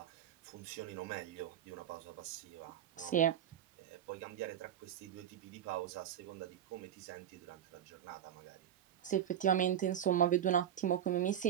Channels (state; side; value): quieter; left; 10.0 dB